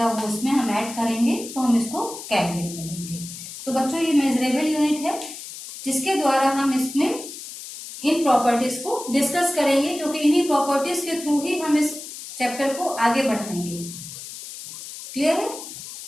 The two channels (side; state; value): left; noise; hiss, 12 dB below the sound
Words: वो उसमें हम ऐड करेंगे, तो हम इसको केल्विन में लेंगे। तो बच्चों ये मेजरेबल यूनिट है जिसके द्वारा हम इसमें इन प्रॉपर्टीज को डिस्कस करेंगे, क्योंकि इन्हीं प्रॉपर्टीज के थ्रू ही हम इस चैप्टर को आगे बढ़ाएंगे। क्लियर है?